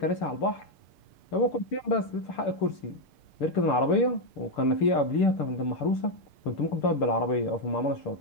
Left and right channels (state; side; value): late; right; 6.8 ms